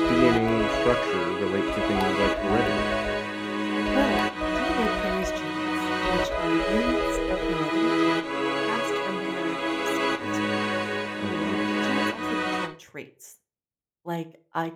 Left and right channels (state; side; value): identical; both; correlation 1.00